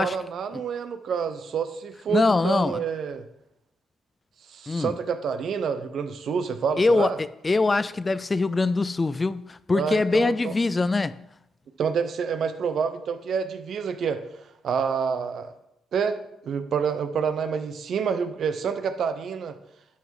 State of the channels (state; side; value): normal; both; correlation 0.82